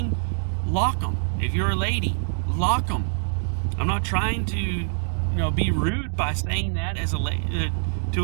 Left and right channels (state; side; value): silent; left; digital silence